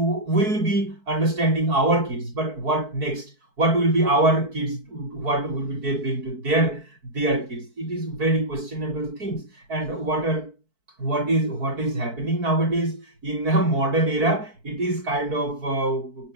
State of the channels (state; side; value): late; left; 4.6 ms